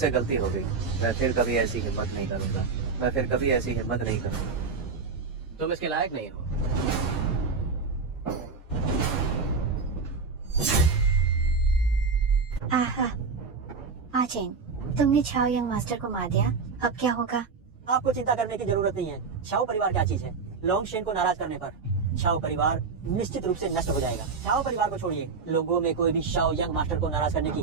गलती हो गई। मैं फिर कभी ऐसी हिम्मत नहीं करूंगा। मैं फिर कभी ऐसी हिम्मत नहीं करूंगा। तुम इसके लायक नहीं हो। आहा, आचेन, तुमने छाओ यंग मास्टर को मार दिया, अब क्या होगा? आपको चिंता करने की जरूरत नहीं है। शाओ परिवार क्या चीज है? लोंगशेन को नाराज करने पर शाओ परिवार निश्चित रूप से नष्ट हो जाएगा। शाओ परिवार को छोड़िए, लोगों में कोई भी शाओ यंग मास्टर को नाराज करने की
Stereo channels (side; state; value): left; quieter; 4.9 dB